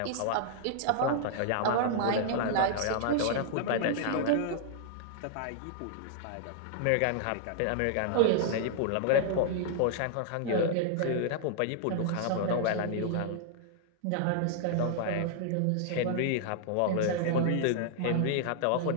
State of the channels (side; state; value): both; different; correlation -0.01